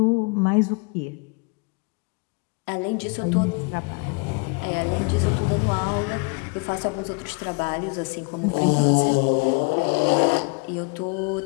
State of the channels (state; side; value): quieter; right; 32.3 dB